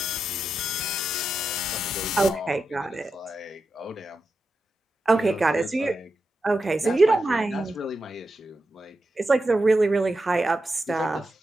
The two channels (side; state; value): both; normal; correlation 0.89